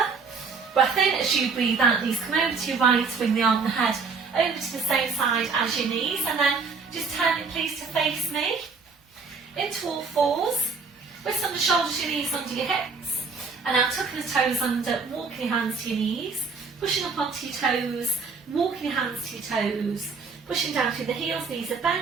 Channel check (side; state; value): left; quieter; 4.9 dB